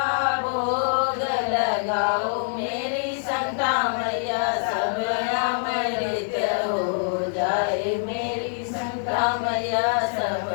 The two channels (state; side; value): silent; right; digital silence